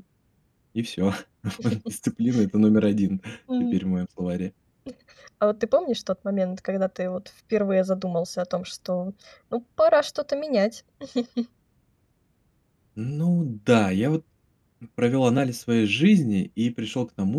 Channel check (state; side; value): identical; both; correlation 1.00